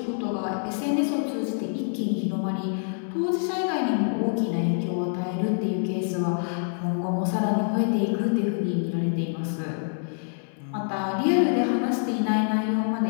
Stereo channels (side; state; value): right; silent; 60 dB below the other